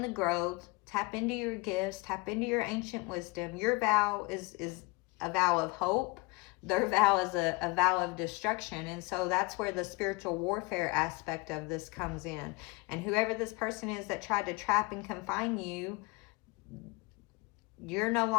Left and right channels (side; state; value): right; quieter; 24.7 dB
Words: the growth, tap into your gifts, tap into your ancient wisdom. Your vow is a vow of hope. Their vow is a vow of destruction. And so that's where the spiritual warfare aspect of this comes in. And whoever this person is that tried to trap and confine you, you're no